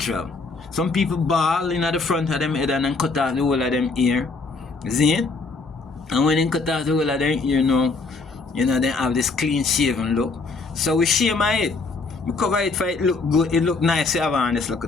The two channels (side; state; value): right; quieter; 4.0 dB